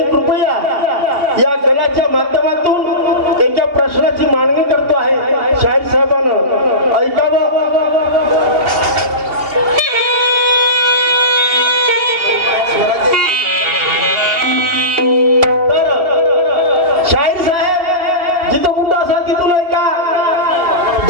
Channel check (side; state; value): left; late; 2.8 ms